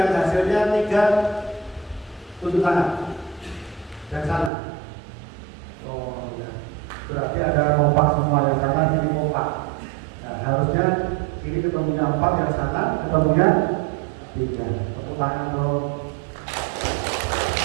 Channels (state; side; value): drops out; left; at 4.5 s